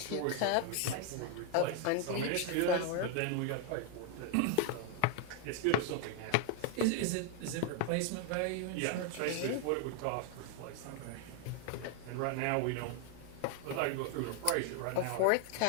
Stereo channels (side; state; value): both; different; correlation 0.00